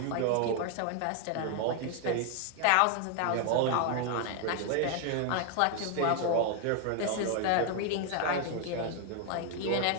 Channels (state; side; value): different; both; correlation 0.00